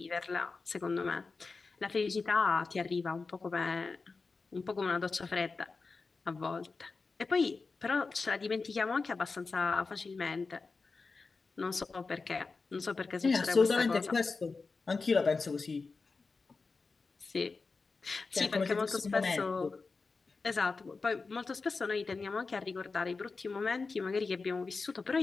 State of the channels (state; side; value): quieter; right; 4.2 dB